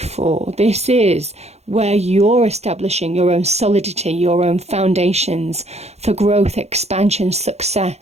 This is where you're establishing your own solidity, your own foundations for growth, expansion,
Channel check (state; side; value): late; left; 0.31 ms